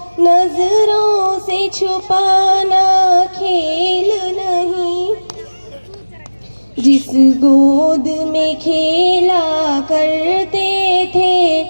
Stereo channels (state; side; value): inverted; both; correlation -1.00